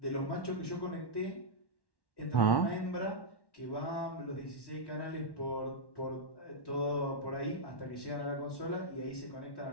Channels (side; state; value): right; late; 1.1 ms